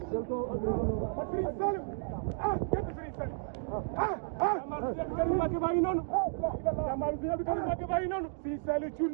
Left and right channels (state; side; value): silent; left; 56 dB below the other